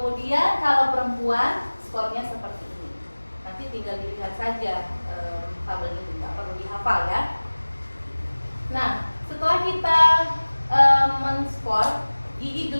kalau perempuan skornya seperti ini. Nanti tinggal dilihat saja tabel ini, nggak perlu dihafal, ya. Nah, setelah kita men-skor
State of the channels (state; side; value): inverted; both; correlation -1.00